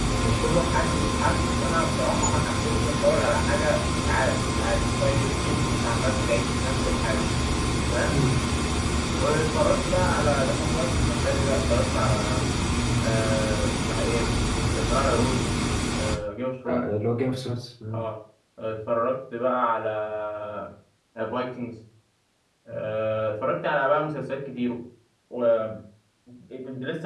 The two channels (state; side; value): identical; both; correlation 1.00